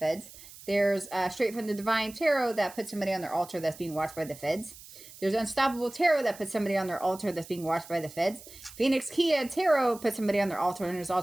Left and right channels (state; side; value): noise; right; hiss, 18 dB below the sound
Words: There's Straight from the Divine Tarot that puts somebody on their altar that's being watched by the feds. There's Unstoppable Tarot that puts somebody on their altar that's being watched by the feds. Phoenix Kia Tarot puts somebody on their altar and is